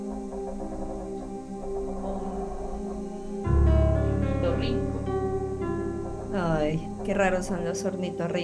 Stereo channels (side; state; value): both; identical; correlation 1.00